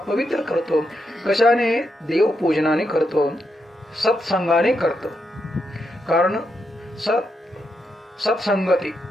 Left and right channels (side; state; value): both; normal; correlation 0.82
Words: करतो. कशाने? देवपूजनाने करतो, सत्संगाने करतो. कारण सत्संगती,